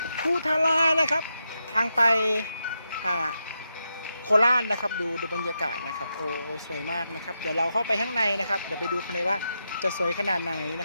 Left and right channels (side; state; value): both; inverted; correlation -0.86